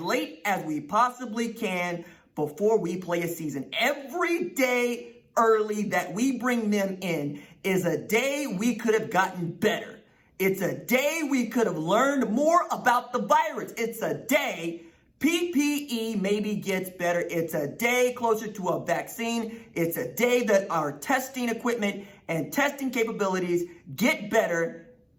late as we possibly can before we play a season. Every day early that we bring them in is a day we could have gotten better. It's a day we could have learned more about the virus. It's a day PPE maybe gets better. It's a day closer to a vaccine. It's a day that our testing equipment and testing capabilities get better,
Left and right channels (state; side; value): identical; both; correlation 1.00